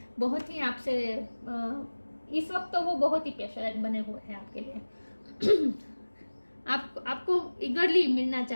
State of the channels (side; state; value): both; inverted; correlation -1.00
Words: बहुत ही आपसे इस वक्त तो वो बहुत ही पैशनेट बने हुए हैं आपके लिए। आपको ईगरली मिलना